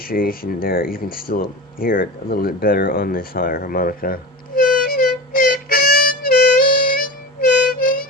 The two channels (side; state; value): both; normal; correlation 0.29